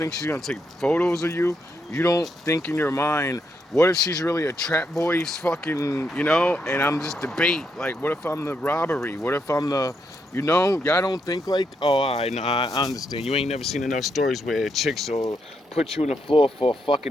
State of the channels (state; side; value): normal; both; correlation 0.79